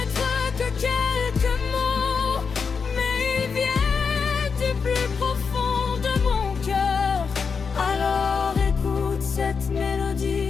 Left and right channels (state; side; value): quieter; right; 5.6 dB